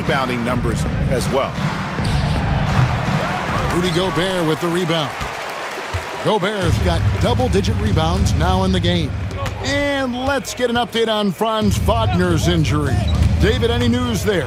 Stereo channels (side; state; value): both; identical; correlation 1.00